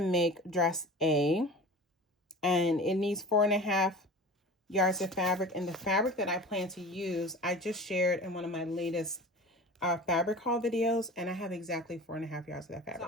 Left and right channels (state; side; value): normal; both; correlation 0.37